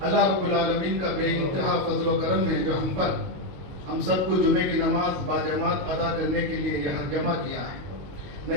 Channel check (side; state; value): left; late; 22 ms